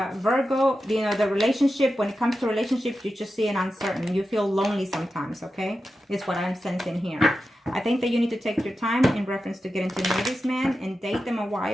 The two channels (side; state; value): both; normal; correlation 0.91